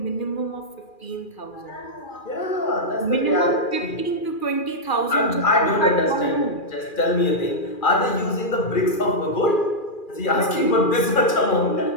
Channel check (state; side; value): late; right; 2.4 ms